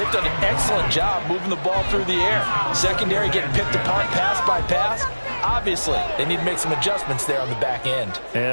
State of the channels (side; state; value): both; inverted; correlation -1.00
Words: done an excellent job moving the ball through the air. Secondary getting picked apart pass by pass. Obviously, they need to make some adjustments there on the back end. Yeah,